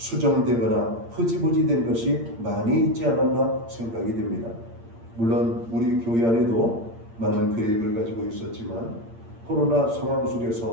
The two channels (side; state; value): left; late; 8.7 ms